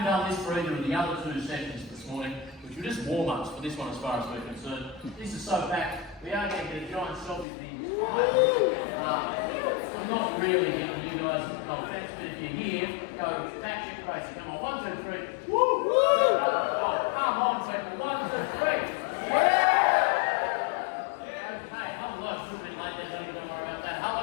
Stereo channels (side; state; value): right; drops out; at 7.5 s